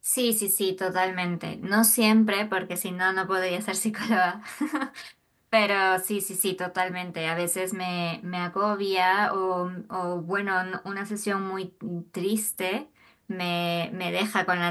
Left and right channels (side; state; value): both; identical; correlation 1.00